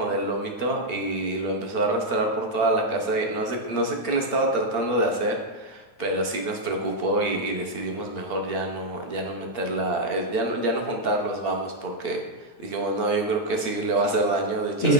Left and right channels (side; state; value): right; late; 8.7 ms